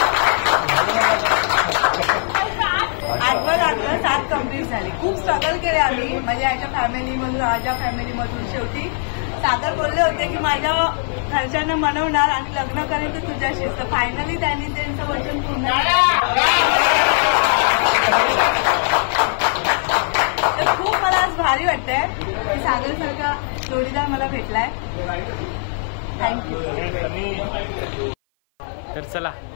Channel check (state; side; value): silent; right; 56 dB below the other